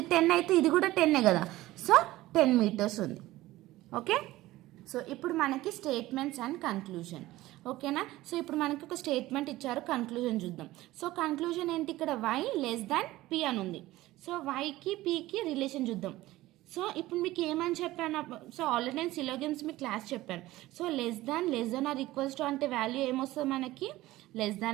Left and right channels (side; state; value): left; quieter; 17.1 dB